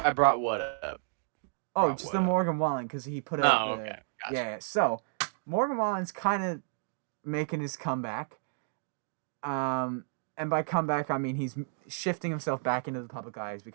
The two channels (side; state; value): left; silent; digital silence